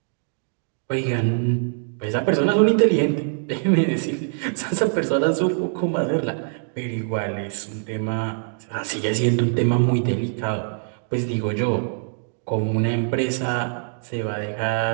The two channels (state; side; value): silent; left; digital silence